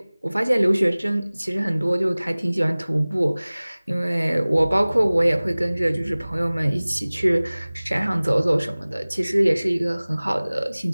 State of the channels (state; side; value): inverted; both; correlation -0.99